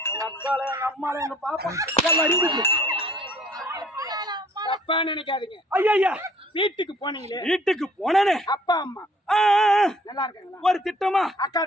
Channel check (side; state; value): both; normal; correlation 0.57